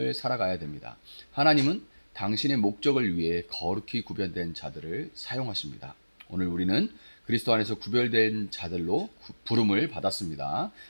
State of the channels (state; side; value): inverted; both; correlation -1.00